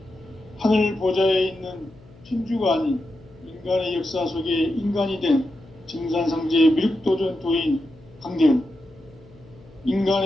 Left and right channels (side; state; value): left; noise; hum, 24 dB below the sound